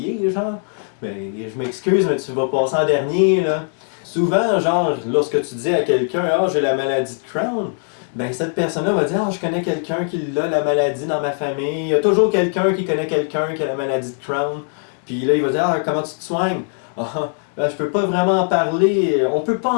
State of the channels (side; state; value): right; silent; 66 dB below the other